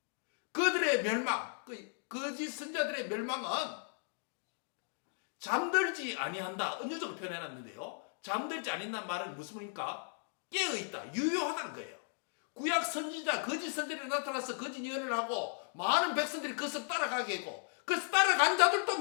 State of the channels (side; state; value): right; silent; 54 dB below the other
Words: 그들의 멸망, 그 거짓 선지자들의 멸망은 잠들지 아니한다. 은유적으로 표현해놨는데요. 잠들지 아니한다는 말은 무슨 말입니까? 깨어있다, 유효하다는 거예요. 구약 선지자, 거짓 선지자들이 나타나서 거짓 예언을 하고 많은 백성들이 그것을 따라가게 했고, 그래서 따라간 자들도